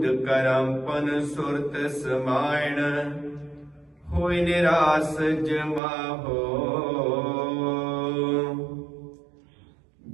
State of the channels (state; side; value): drops out; left; at 5.8 s